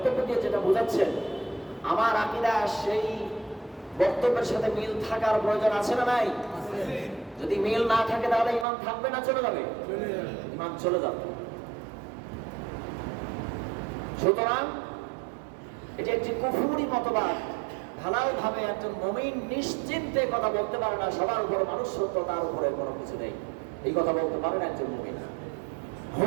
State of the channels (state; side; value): drops out; left; at 8.7 s